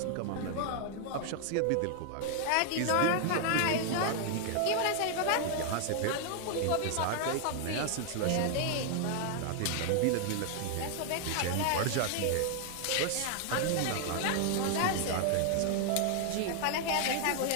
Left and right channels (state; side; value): different; both; correlation 0.00